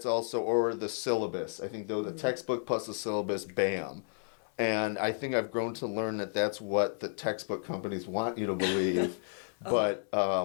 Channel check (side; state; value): right; silent; 56 dB below the other